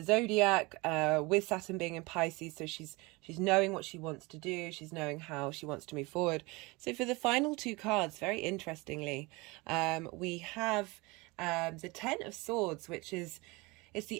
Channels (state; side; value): quieter; left; 24.8 dB